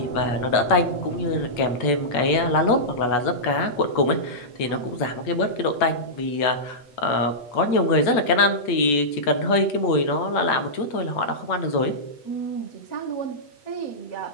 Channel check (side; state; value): right; late; 8.2 ms